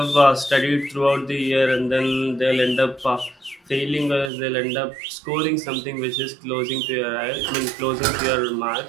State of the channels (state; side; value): drops out; left; at 4.3 s